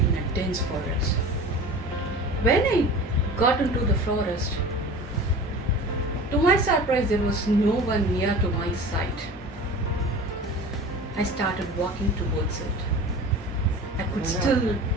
a dense forest. When I got into the forest, to my surprise, there was no one near to my side. I started walking towards it. I could still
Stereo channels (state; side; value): normal; both; correlation 0.37